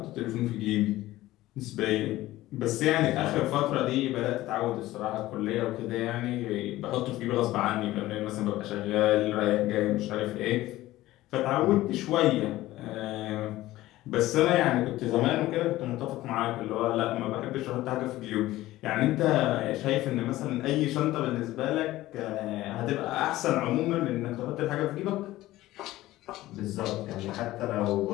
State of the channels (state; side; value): quieter; right; 16.4 dB